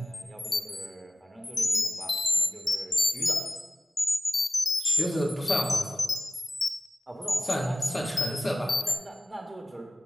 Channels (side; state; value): both; normal; correlation 0.97